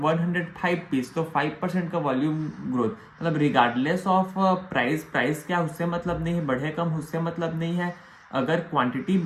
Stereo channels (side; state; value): both; identical; correlation 1.00